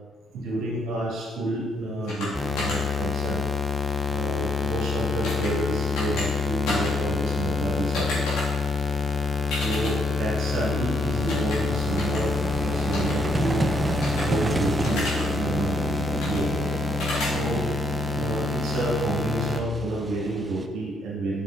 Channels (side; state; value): both; normal; correlation 0.71